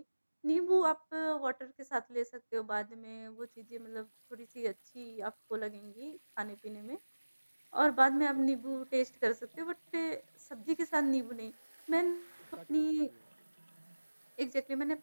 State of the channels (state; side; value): inverted; both; correlation -1.00